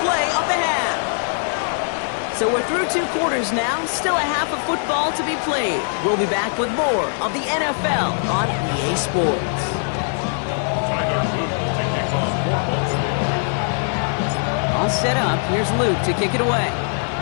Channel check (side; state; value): right; silent; 65 dB below the other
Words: play of the half. So we're through 2 quarters now, still a half of football to be played. We'll be back with more of the NFL on EA Sports. All set up, here's Luke to kick it away.